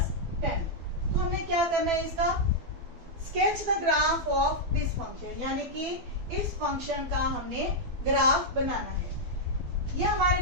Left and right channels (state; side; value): late; left; 12 ms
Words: 10। तो हमें क्या करना है, इसका sketch the graph of this function, यानी कि इस फंक्शन का हमने ग्राफ बनाना है। ये हमारे